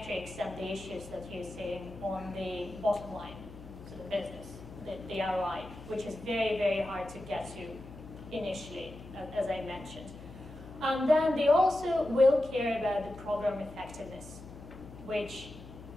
and the issues that you're seeing on the bottom line, so the business, the ROI, which is very, very hard to get to initially, as I mentioned. And then they also will care about the program effectiveness, which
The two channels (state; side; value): noise; left; hum, 15 dB below the sound